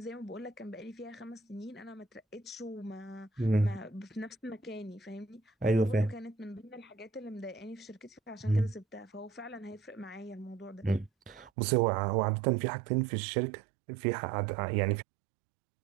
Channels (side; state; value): left; drops out; at 11.5 s